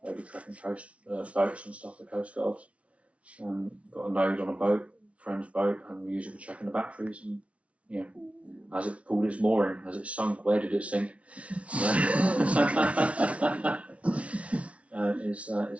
maybe tracking coast boats and stuff for coast guards. Got a node on a boat, friend's boat, and we use it for checking the batteries. And you know, has it pulled its mooring? Has it sunk? Where did it sink?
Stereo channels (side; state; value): left; late; 0.063 ms